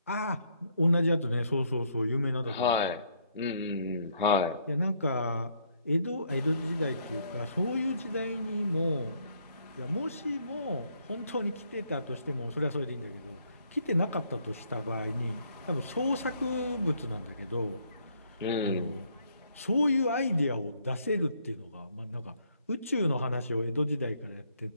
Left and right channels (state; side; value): inverted; both; correlation -0.69